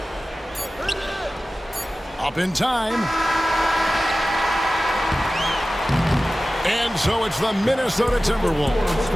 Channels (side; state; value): both; normal; correlation 0.96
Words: Up in time. And so it's the Minnesota